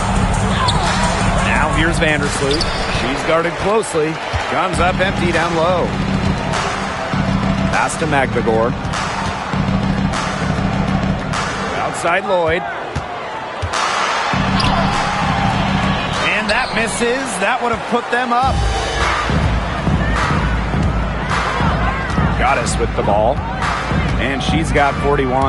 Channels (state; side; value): identical; both; correlation 1.00